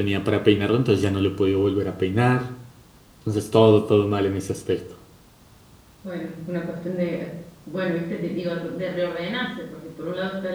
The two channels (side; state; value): both; identical; correlation 1.00